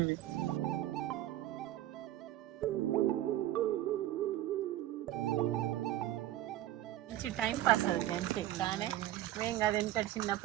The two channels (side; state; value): left; quieter; 13.8 dB